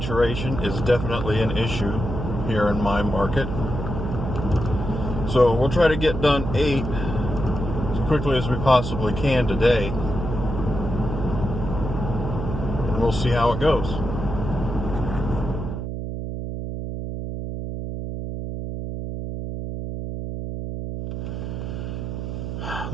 is definitely an issue here in my market. So we'll try to get done 8 as quickly as we possibly can today. And we'll see how it goes.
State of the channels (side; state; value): right; noise; hum, 5 dB below the sound